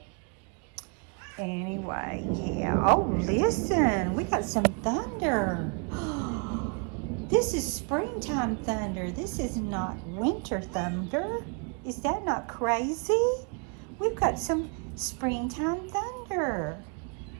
anyway, yeah. Oh, listen, we got some thunder. This is springtime thunder. This is not winter thunder. Is that not crazy? We've got some springtime thunder.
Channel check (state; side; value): quieter; left; 37.1 dB